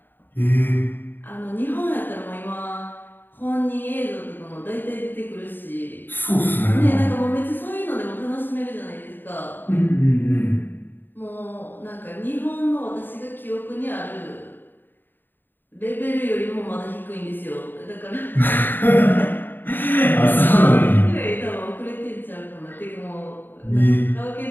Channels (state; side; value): late; right; 0.093 ms